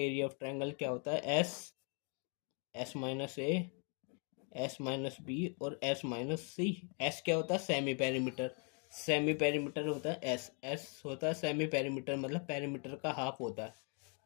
एरिया ऑफ ट्रायंगल क्या होता है? S minus A, S minus B और एस माइनस सी। एस क्या होता है? Semi perimeter. सेमी पेरीमीटर होता है एस। एस होता है सेमी पेरीमीटर, मतलब पेरीमीटर का हाफ होता है।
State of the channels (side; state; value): right; quieter; 38.1 dB